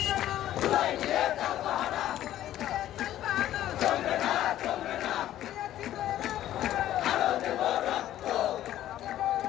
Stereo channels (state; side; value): quieter; right; 12.9 dB